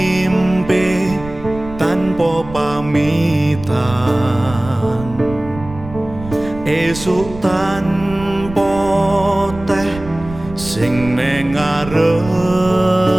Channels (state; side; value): noise; right; rumble, 14 dB below the sound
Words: tanpa pamitan esuk tanpa teh sing ning ngarepan